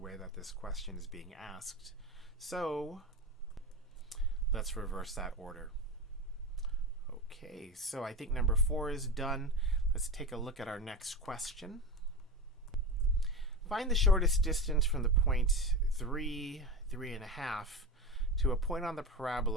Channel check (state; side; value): normal; both; correlation 0.24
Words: that this question is being asked. So let's reverse that order. Okay, so I think number 4 is done. Let's take a look at our next question. Find the shortest distance from the point 3, 3.5 to a point on the